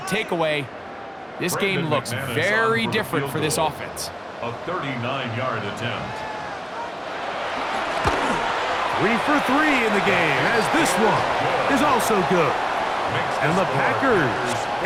takeaway, this game looks very different for this offense. A 39-yard attempt. 3 for 3 in the game, as this one is also good. And the Packers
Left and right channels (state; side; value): identical; both; correlation 1.00